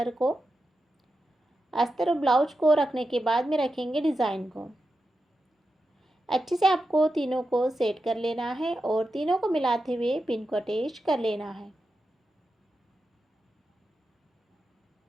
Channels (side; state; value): both; normal; correlation 0.89